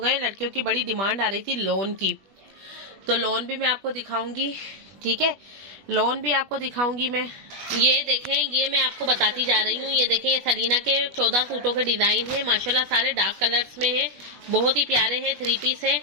लड़कियों की बड़ी डिमांड आ रही थी लोन की, तो लोन भी मैं आपको दिखाऊंगी। ठीक है, लोन भी आपको दिखाऊंगी मैं। ये देखें, ये मैं आपको बताती जा रही हूँ। ये देखें, ये सलीना के 14 सूटों के डिजाइन है माशाल्लाह, सारे डार्क कलर्स में है, बहुत ही प्यारे हैं, 3 पीस है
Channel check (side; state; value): left; late; 21 ms